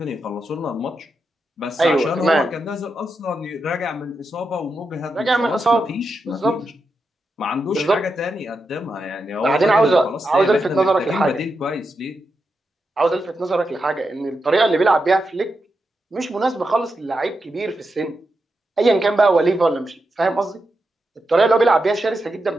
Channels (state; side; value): normal; both; correlation 0.87